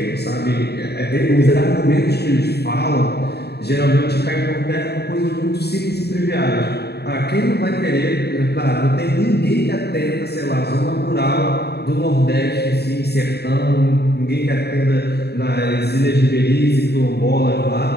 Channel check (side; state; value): right; late; 0.48 ms